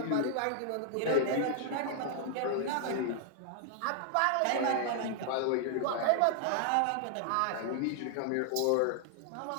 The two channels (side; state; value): both; different; correlation -0.01